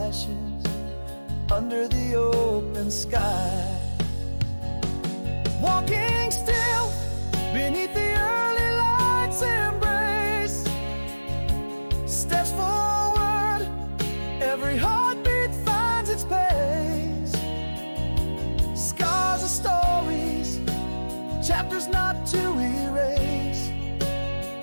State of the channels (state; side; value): inverted; both; correlation -1.00